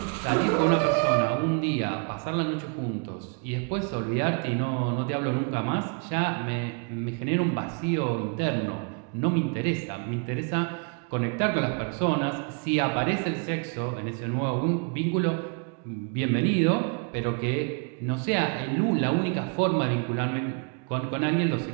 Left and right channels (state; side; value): quieter; left; 36.6 dB